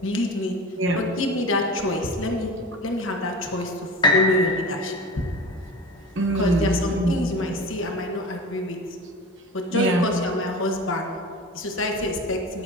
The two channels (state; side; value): normal; both; correlation 0.34